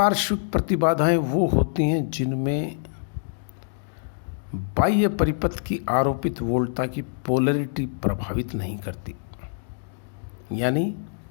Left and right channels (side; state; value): right; silent; digital silence